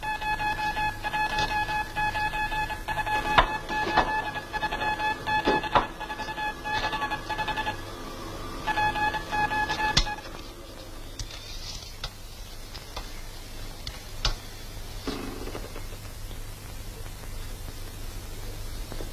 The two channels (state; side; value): identical; both; correlation 1.00